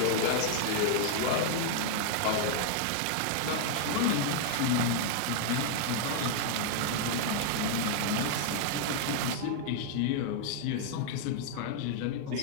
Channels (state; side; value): different; both; correlation 0.00